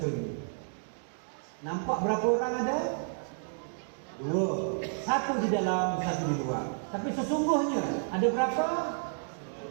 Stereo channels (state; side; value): silent; left; digital silence